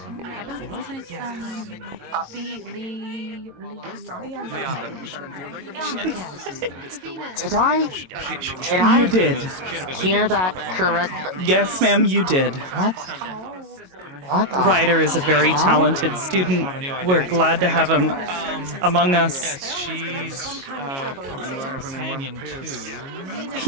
Did I You did. hear that correct? Yes, ma'am, you did. What? What? Ryder is a very talented student. We're glad to have him among us. She's companion too.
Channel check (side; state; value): left; late; 22 ms